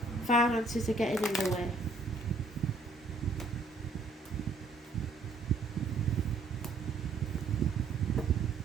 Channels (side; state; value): left; quieter; 3.4 dB